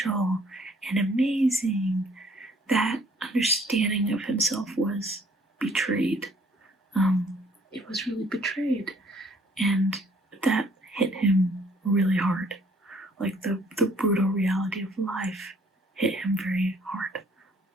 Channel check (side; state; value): both; normal; correlation 0.61